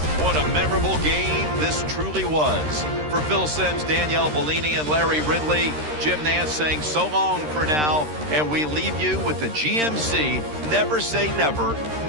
What a memorable game this truly was. For Phil Simms, Danielle Bellini, and Larry Ridley, Jim Nance saying so long for now, and we leave you with the GMC Never Say Never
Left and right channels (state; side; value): late; left; 13 ms